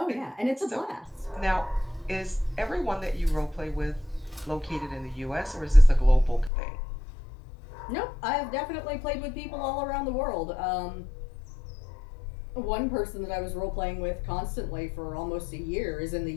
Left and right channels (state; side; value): drops out; right; at 6.5 s